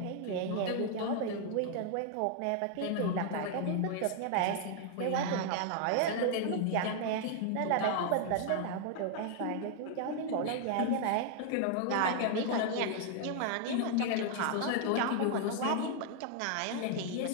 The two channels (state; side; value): different; both; correlation 0.00